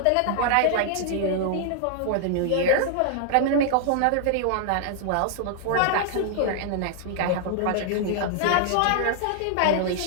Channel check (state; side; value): different; both; correlation 0.00